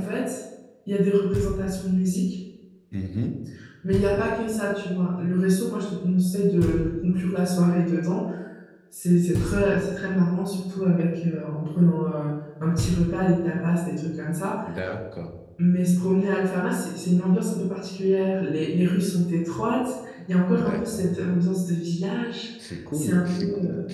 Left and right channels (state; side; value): identical; both; correlation 1.00